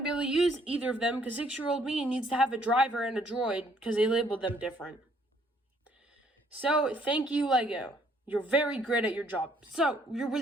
to be able to use either of them because 6-year-old me needs to have a driver and a droid because they labeled them different. So, thank you, Lego. You're very great at your job. So, you're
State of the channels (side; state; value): both; normal; correlation 0.65